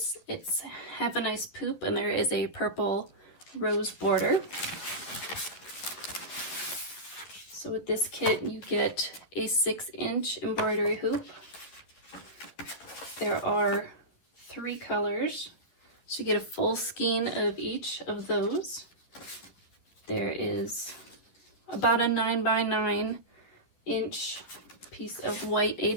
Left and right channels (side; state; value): right; late; 11 ms